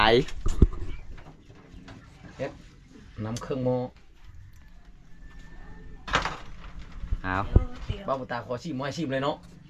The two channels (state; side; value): identical; both; correlation 1.00